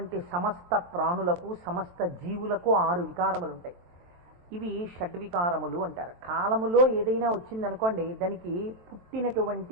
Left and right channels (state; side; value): late; left; 23 ms